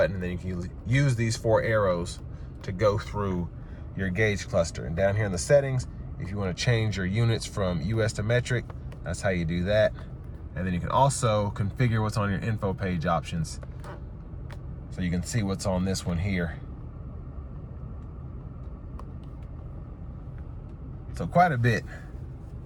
and then you can use these 4 arrows to go through your gauge cluster. And down here in the settings, if you want to change your units from US to metric, that's how you do that. And then you can also configure what's on your info page options. So you can see what's on this one here. So quite a bit.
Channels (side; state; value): both; identical; correlation 1.00